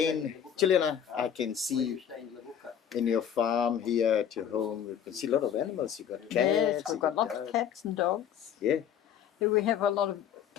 Juliana, I can see stay in Levuka. in your farm here at your home, you can see a lot of animals. You got cats. Yes, you we've got lots dogs. of cats and dogs. Yeah. Here we have a lot of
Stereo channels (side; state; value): right; quieter; 9.0 dB